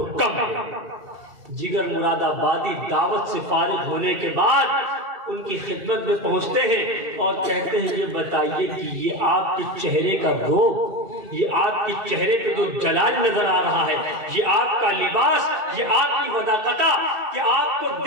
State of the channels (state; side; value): late; left; 2.7 ms